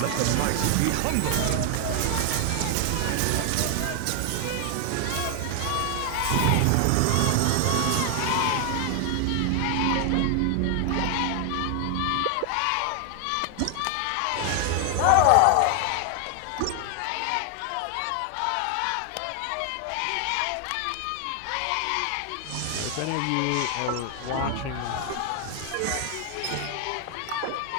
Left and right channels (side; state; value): both; different; correlation 0.00